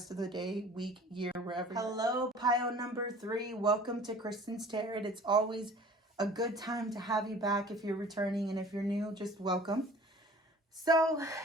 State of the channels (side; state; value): both; normal; correlation 0.46